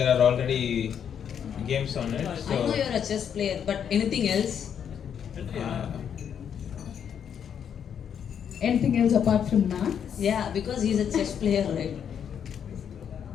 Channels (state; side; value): quieter; right; 8.2 dB